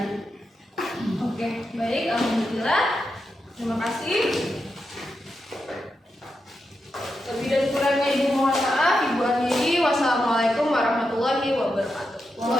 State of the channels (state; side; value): normal; both; correlation 0.87